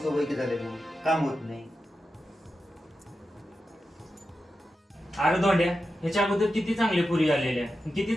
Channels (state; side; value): normal; both; correlation 0.90